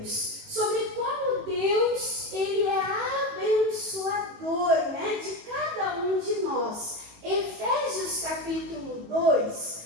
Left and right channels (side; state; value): left; late; 18 ms